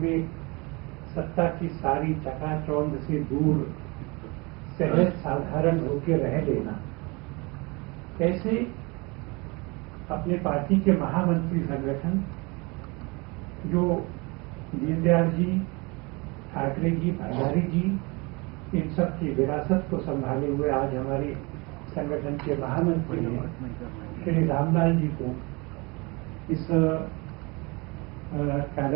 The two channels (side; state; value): left; quieter; 27.2 dB